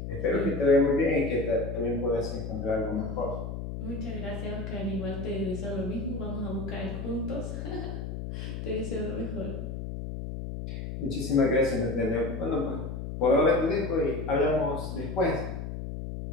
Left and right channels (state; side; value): noise; left; hum, 6 dB below the sound